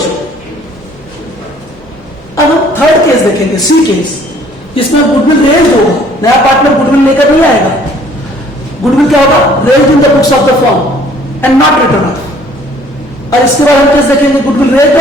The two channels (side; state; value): both; normal; correlation 0.57